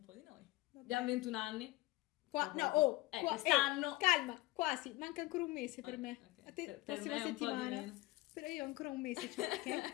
po' di noi. Vabbè. Abbiamo 21 anni. Quest'anno. Calma, quasi, manca ancora un mese per me. Okay. A te Per prossima me è un settimana. po' di meno. Però io ho ancora un mese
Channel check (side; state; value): right; quieter; 18.9 dB